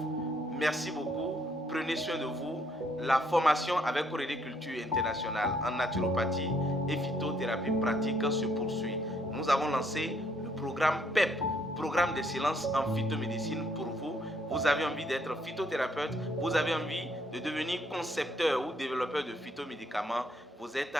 Merci beaucoup. Prenez soin de vous. La formation avec Corée Culture Internationale en naturopathie et phytothérapie pratique se poursuit. Nous avons lancé le programme PEP, programme d'excellence en phytomédecine pour vous. Vous avez envie d'être phytothérapeute, vous avez envie de devenir concepteur ou développeur de phytomédicaments, vous êtes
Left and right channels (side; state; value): both; normal; correlation 0.69